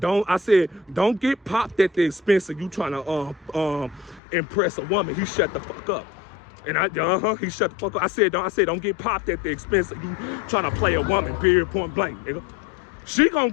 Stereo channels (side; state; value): right; drops out; at 4.2 s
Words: get popped at the expense of you trying to impress a woman. He shut the fuck up. And he shut the fuck up. I said, don't get popped at the expense of you trying to play a woman, period, point blank, nigga. She gonna